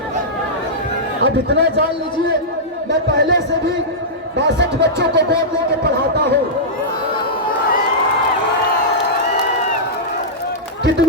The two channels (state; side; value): normal; both; correlation -0.13